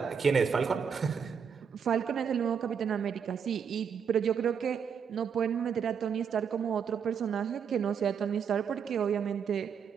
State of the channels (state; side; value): quieter; left; 7.0 dB